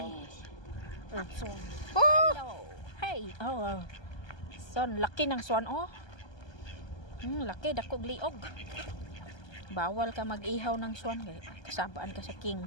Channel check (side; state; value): right; late; 1.2 ms